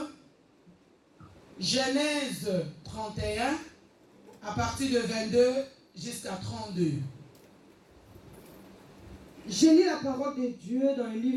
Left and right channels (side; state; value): both; identical; correlation 1.00